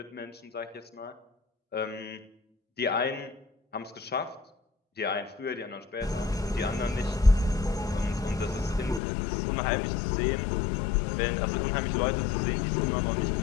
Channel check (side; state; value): right; drops out; at 9.0 s